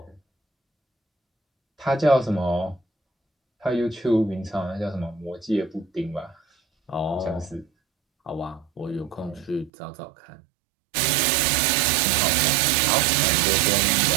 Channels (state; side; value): drops out; left; at 9.7 s